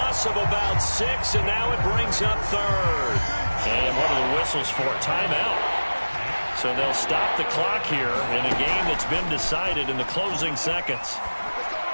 of about 6, and now it brings up third. And what are the whistles for? Timeout. So they'll stop the clock here in a game that's been decided in the closing seconds.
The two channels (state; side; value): inverted; both; correlation -1.00